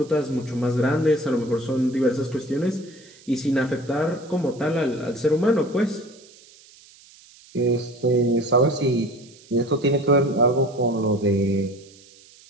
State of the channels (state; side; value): noise; right; hiss, 25 dB below the sound